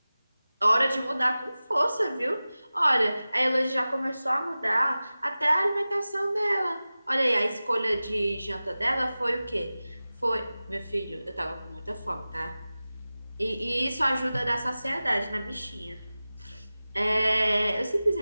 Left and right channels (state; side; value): inverted; both; correlation -0.96